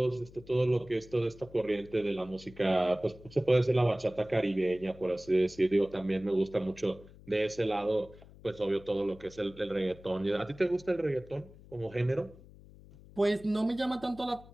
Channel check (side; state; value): left; noise; hum, 21 dB below the sound